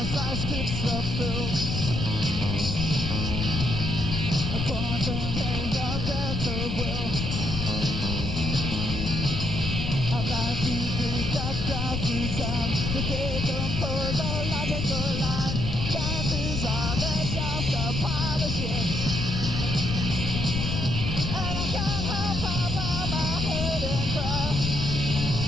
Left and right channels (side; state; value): left; noise; rumble, 2 dB below the sound